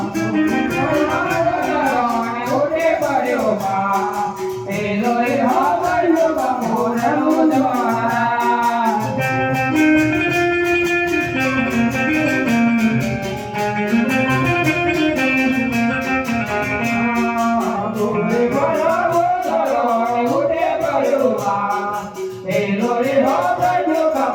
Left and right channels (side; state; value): both; identical; correlation 1.00